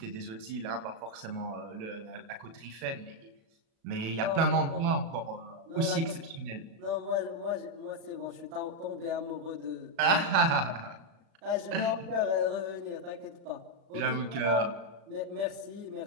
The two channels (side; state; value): left; late; 36 ms